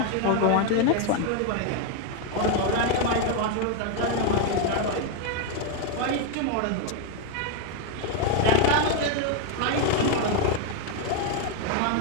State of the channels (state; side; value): different; both; correlation 0.01